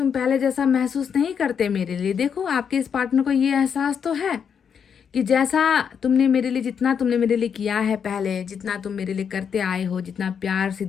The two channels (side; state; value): right; quieter; 7.2 dB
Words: पहले जैसा महसूस नहीं करते मेरे लिए। देखो आपके इस पार्टनर को ये एहसास तो है कि जैसा तुमने मेरे लिए, जितना तुमने मेरे लिए किया है पहले, जितना तुम मेरे लिए करते आए हो, जितना प्यार,